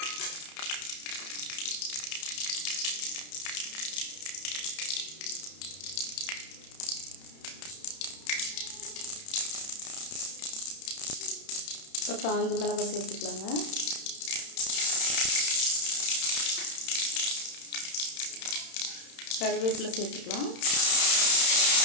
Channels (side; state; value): right; late; 31 ms